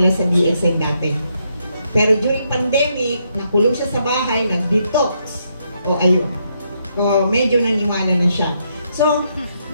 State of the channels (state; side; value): inverted; both; correlation -0.77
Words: sa DXN dati? Pero during pandemic, nakulong siya sa bahay, nag-detox. O ayun. O medyo naniwala na siya. So,